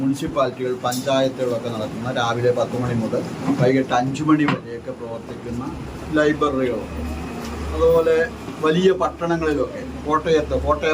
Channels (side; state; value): both; identical; correlation 1.00